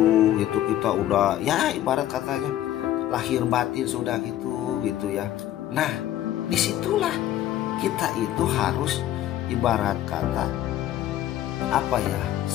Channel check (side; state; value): right; quieter; 12.8 dB